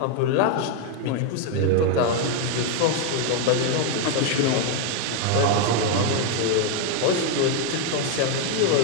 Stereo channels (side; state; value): both; different; correlation 0.01